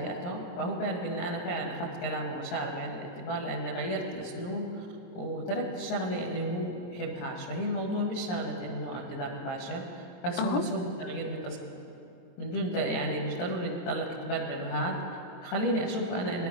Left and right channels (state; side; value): late; right; 22 ms